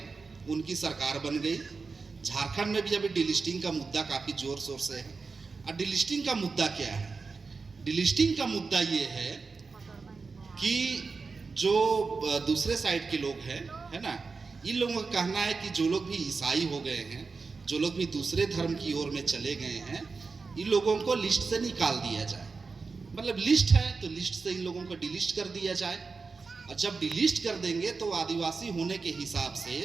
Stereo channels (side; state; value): left; quieter; 4.5 dB